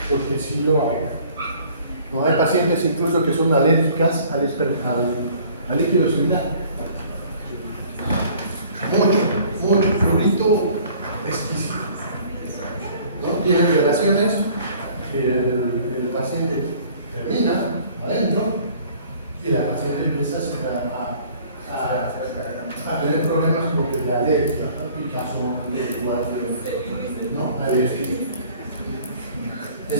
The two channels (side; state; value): both; inverted; correlation -0.53